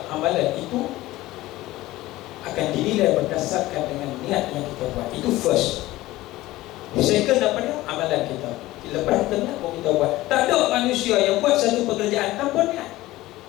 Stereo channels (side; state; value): right; quieter; 17.4 dB